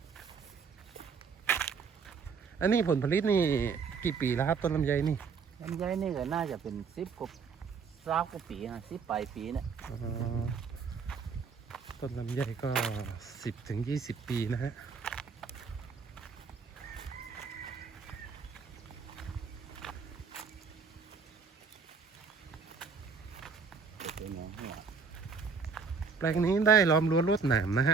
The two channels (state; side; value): quieter; left; 5.4 dB